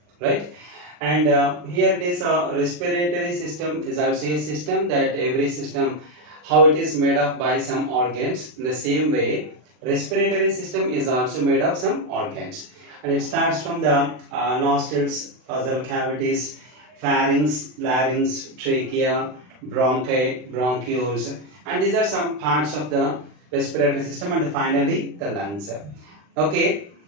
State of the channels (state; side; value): late; left; 40 ms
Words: right? And here it is a respiratory system is also a system that every system how it is made up by some organs. In the same way, respiratory system is also made of some organs, and it starts from the nostrils, nasal cavities, pharynx, larynx, trachea, bronchi, bronchioles, and these are some parts of the respiratory system, and finally the lungs. Okay,